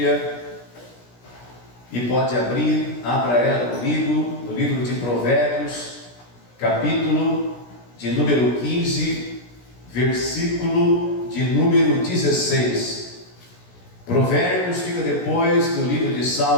e pode abrir, abra ela comigo, no livro de Provérbios, capítulo de número 15, versículo de número 16. Provérbios fica depois do livro de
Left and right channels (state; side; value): late; right; 17 ms